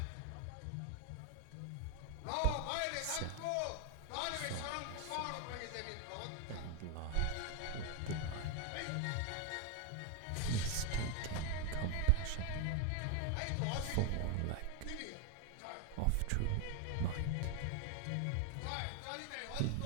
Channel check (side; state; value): both; different; correlation 0.00